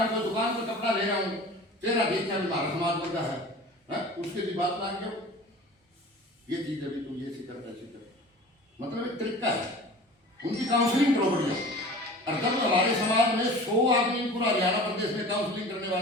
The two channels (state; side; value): normal; both; correlation 0.40